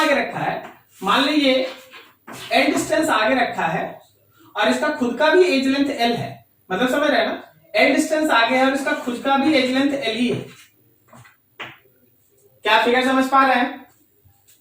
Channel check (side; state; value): both; identical; correlation 1.00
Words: आगे रखा है? मान लीजिए एल डिस्टेंस आगे रखा है और इसका खुद का भी एज लेंथ एल है, मतलब समझ रहे हैं ना, एल डिस्टेंस आगे है और इसका खुद का भी एज लेंथ एल ही है। क्या फिगर समझ पा रहे हैं?